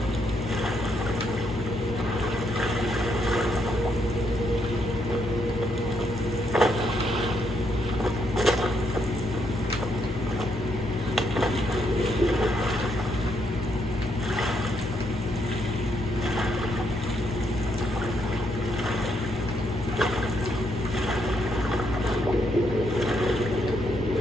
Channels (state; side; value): normal; both; correlation 0.76